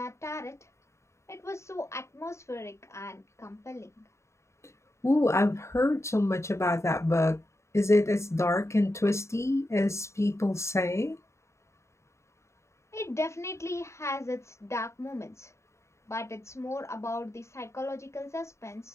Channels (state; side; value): late; right; 0.14 ms